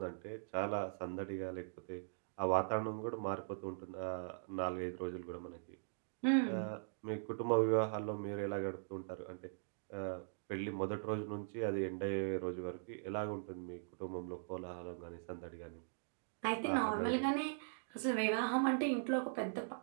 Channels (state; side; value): silent; left; digital silence